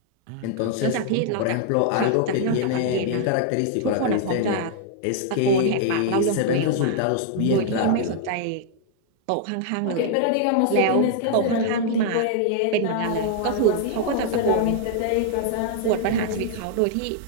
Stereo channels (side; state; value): both; different; correlation 0.00